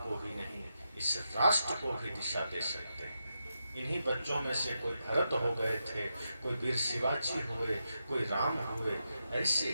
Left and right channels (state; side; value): inverted; both; correlation -0.86